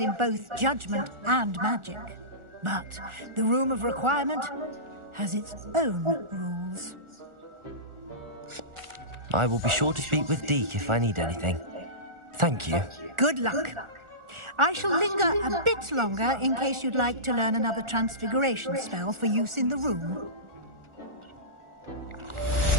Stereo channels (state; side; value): late; left; 1.4 ms